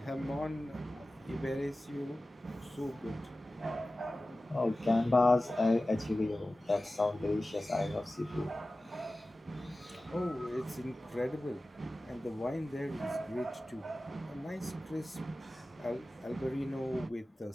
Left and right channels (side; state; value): both; normal; correlation 0.96